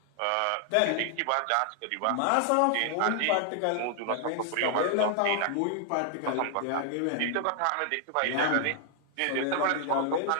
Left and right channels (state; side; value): different; both; correlation 0.00